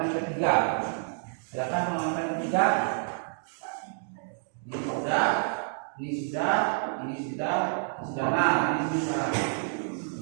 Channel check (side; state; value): left; silent; 59 dB below the other